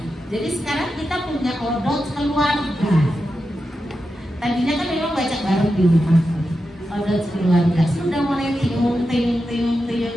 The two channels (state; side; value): normal; both; correlation 0.89